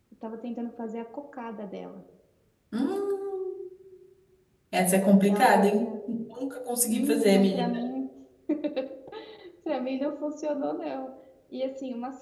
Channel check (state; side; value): identical; both; correlation 1.00